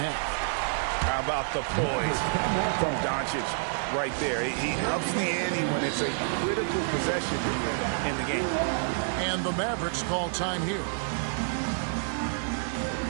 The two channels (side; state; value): left; silent; digital silence